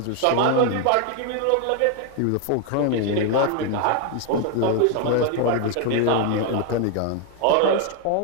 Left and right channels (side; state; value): both; different; correlation 0.01